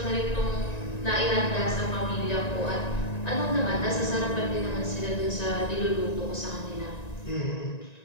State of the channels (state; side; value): late; right; 1.9 ms